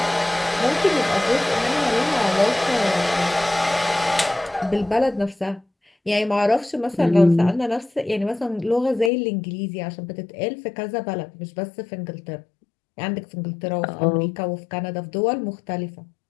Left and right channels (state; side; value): drops out; right; at 9.1 s